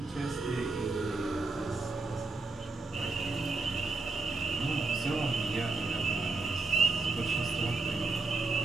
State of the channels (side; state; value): left; quieter; 3.6 dB